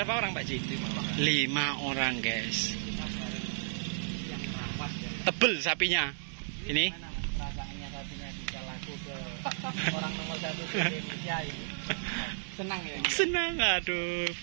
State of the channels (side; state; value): left; silent; digital silence